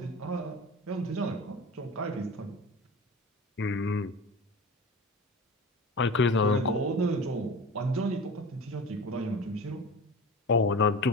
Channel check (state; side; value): normal; both; correlation 0.33